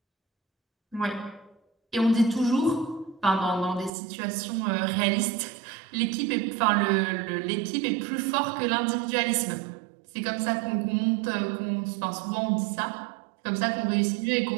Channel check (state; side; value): drops out; left; at 3.9 s